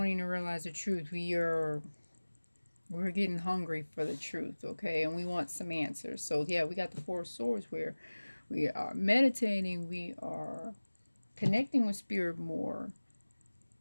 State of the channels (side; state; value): both; inverted; correlation -1.00